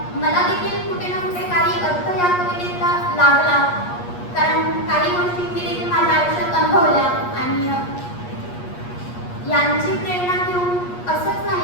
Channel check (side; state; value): right; late; 8.4 ms